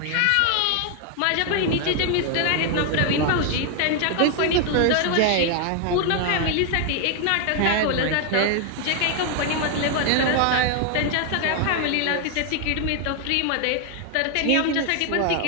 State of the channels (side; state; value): both; different; correlation 0.00